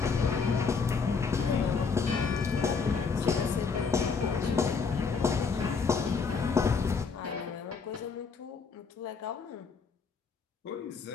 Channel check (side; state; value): right; quieter; 5.2 dB